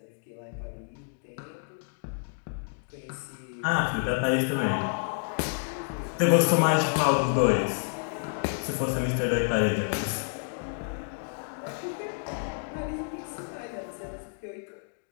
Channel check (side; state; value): right; silent; digital silence